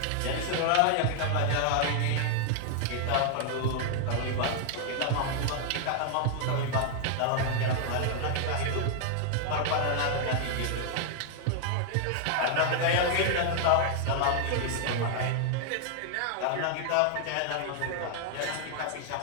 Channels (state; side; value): different; both; correlation 0.00